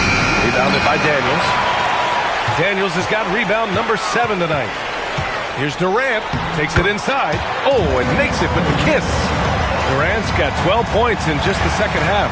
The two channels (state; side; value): identical; both; correlation 1.00